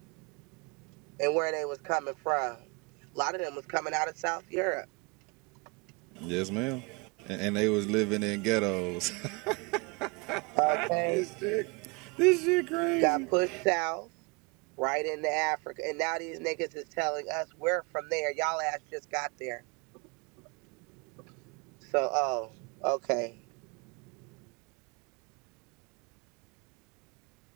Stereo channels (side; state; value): left; quieter; 29.8 dB